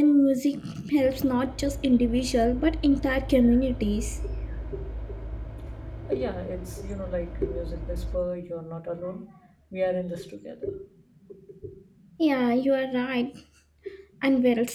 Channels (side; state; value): both; identical; correlation 1.00